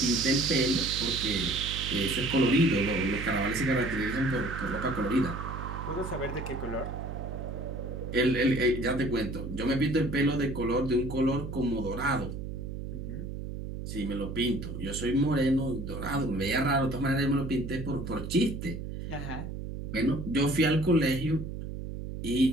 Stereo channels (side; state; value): right; noise; hum, 7 dB below the sound